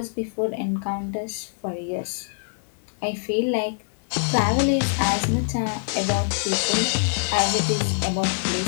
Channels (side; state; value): right; silent; digital silence